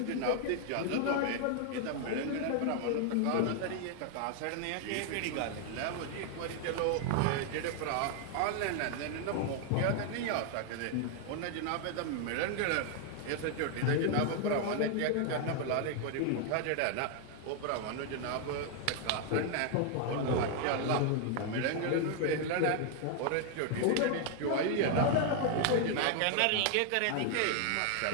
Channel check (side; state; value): both; different; correlation 0.00